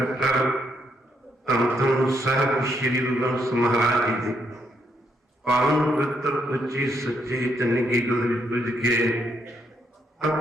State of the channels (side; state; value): both; normal; correlation 0.75